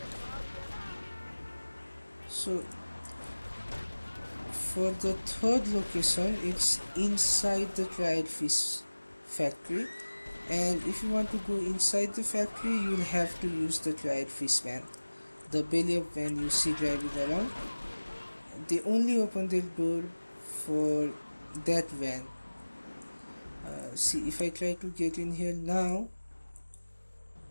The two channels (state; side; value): inverted; both; correlation -1.00